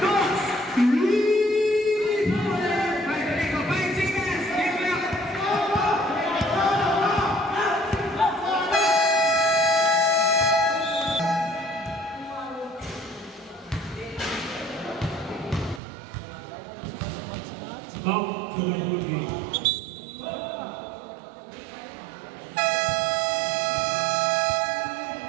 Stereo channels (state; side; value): drops out; left; at 15.8 s